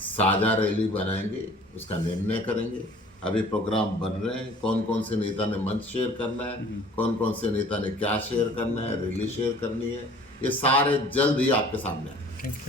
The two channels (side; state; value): both; normal; correlation 0.50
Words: रैली बनाएंगे, उसका निर्णय करेंगे। अभी प्रोग्राम बन रहे हैं, कौन कौन से नेता ने मंच शेयर करना है, कौन कौन से नेता ने क्या शेयर करना है, रैली शेयर करनी है, ये सारे जल्द ही आपके सामने आएंगे।